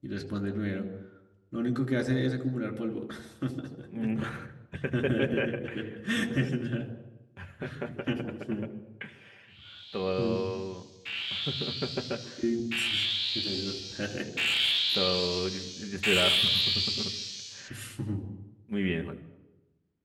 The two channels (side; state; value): both; identical; correlation 1.00